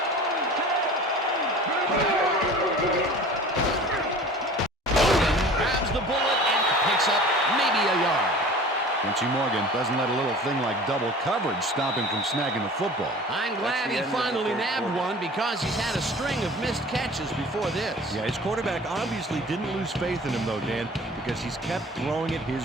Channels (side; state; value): both; normal; correlation 0.42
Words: Grabs the bullet and picks up maybe a yard. Quincy Morgan doesn't let a little thing like double coverage stop him from snagging the football. I'm glad he finally nabbed one because he's had a string of missed catches before this. Yeah, his quarterback obviously didn't lose faith in him, though, Dan, because he's kept throwing it his